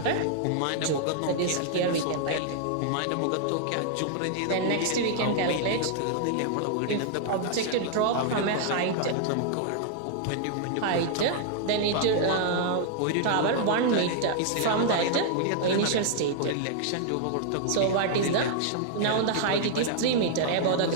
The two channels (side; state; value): both; different; correlation -0.01